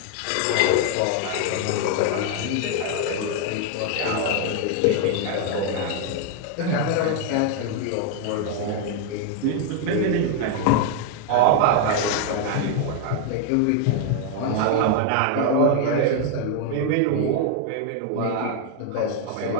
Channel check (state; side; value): different; both; correlation 0.00